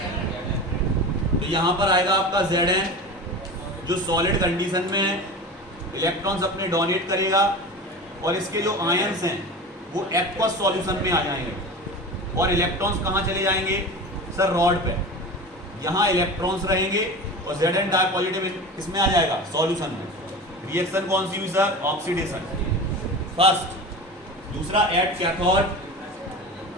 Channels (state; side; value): normal; both; correlation 0.31